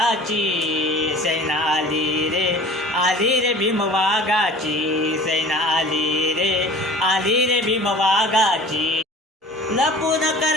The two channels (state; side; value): normal; both; correlation 0.45